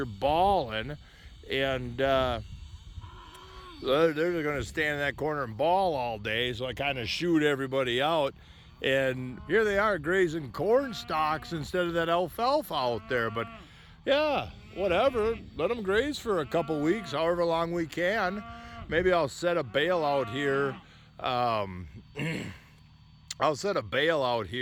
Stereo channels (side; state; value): both; identical; correlation 1.00